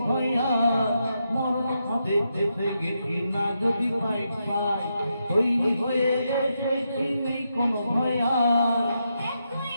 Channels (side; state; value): both; inverted; correlation -0.83